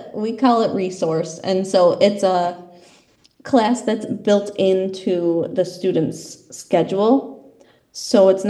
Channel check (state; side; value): identical; both; correlation 1.00